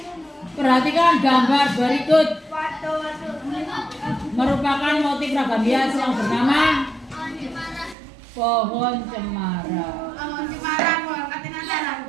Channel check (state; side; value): drops out; left; at 8.0 s